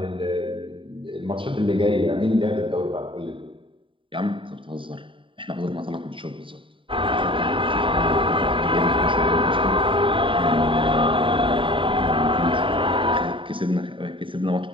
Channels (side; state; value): left; late; 0.25 ms